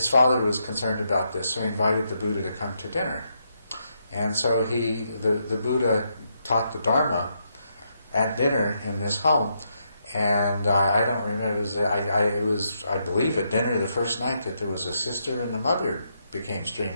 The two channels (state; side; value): inverted; both; correlation -0.79